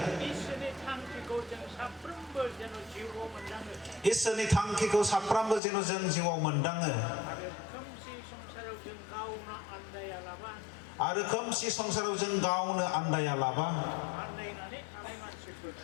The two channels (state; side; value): drops out; right; at 5.6 s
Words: इसोरनि थांखिखौ साफ्रोमबो जेन' जों जिउआव मोनदाङो आरो खोमसि संसाराव जों गावनो आन्दायालाबा